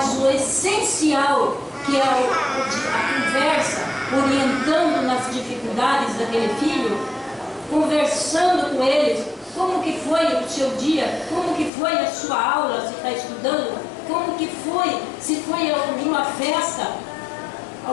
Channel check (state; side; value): drops out; right; at 11.7 s